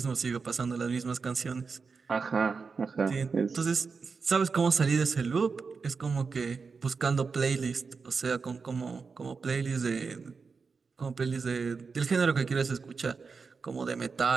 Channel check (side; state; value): left; quieter; 5.0 dB